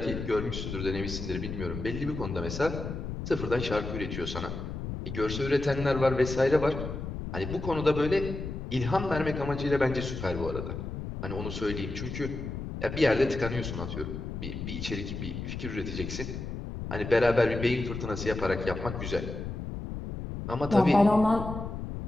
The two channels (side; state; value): left; noise; rumble, 6 dB below the sound